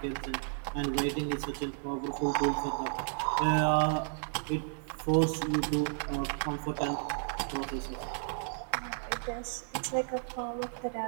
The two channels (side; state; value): left; silent; digital silence